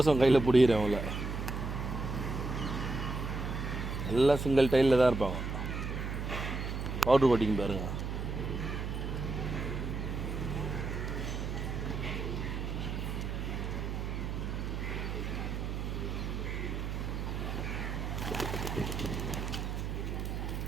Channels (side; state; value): right; noise; hum, 3 dB below the sound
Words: கையில் பிடிக்கிறேன். அவங்கள எல்லாம் சிங்கிள் டைலில் தான் இருப்பாங்க. பவுட்ரு கோட்டிங் பாருங்கள்.